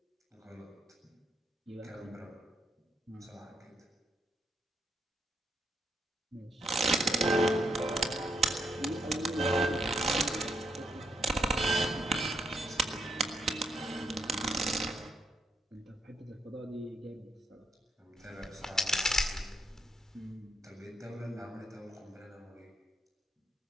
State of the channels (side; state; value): both; normal; correlation 0.77